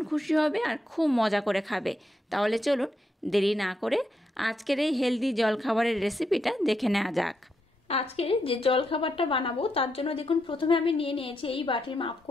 খুশি হবে আর খুব মজা করে খাবে। তাহলে চলুন দেরি না করে আজকের এই হেলদি জলখাবারের রেসিপিটা দেখে নেওয়া যাক। আজকে যে জলখাবারটা বানাবো তার জন্য দেখুন প্রথমে আমি নিয়ে নিয়েছি এই বাটির মাপ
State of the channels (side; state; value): both; normal; correlation 0.82